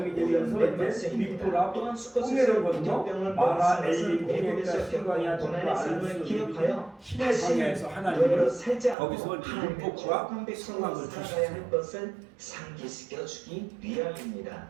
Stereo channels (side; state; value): left; drops out; at 9.0 s